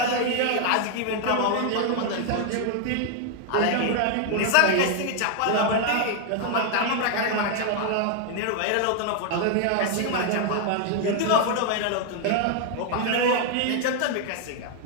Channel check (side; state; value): both; different; correlation 0.00